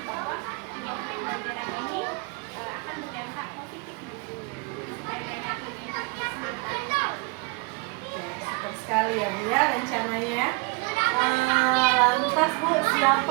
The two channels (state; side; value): quieter; left; 29.1 dB